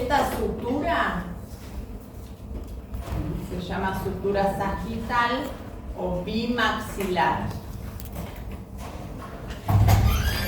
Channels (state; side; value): identical; both; correlation 1.00